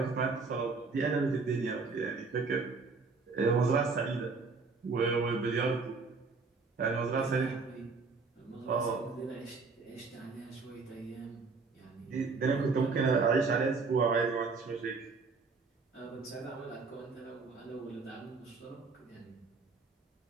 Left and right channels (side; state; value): left; quieter; 4.4 dB